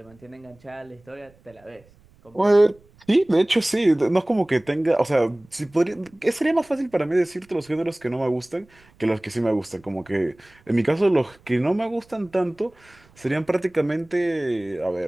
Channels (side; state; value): right; noise; rumble, 29 dB below the sound